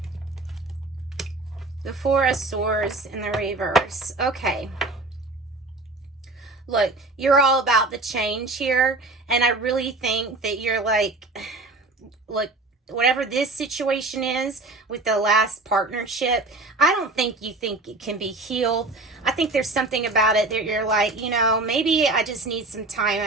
The Four of Swords in the reverse. Okay. Look, you're all about the change here. And I really think that you're like, look, whatever this situation is with the last partnership, I don't think you think it can be healed. I think there's something about it that you're like, maybe I just need some time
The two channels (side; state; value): left; quieter; 3.1 dB